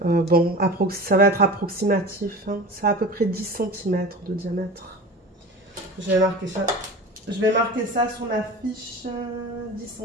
Bon, ça va être approximatif. Hein. Ça a à peu près 10 cm de diamètre. Je vais marquer ça. Je vais marquer ça sur ma fiche, 10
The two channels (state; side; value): normal; both; correlation 0.34